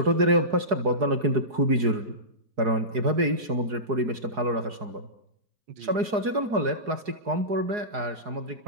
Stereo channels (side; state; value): left; late; 4.8 ms